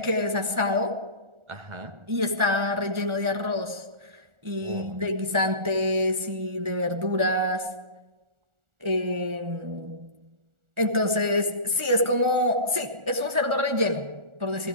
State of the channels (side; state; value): left; late; 1.4 ms